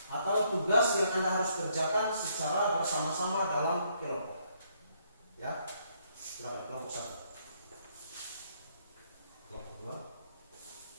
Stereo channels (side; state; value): both; inverted; correlation -0.71